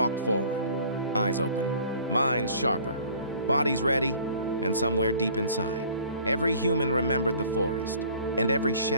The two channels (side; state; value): both; inverted; correlation -0.51